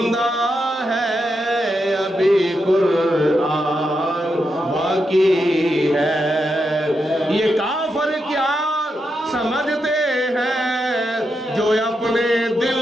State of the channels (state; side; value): normal; both; correlation 0.85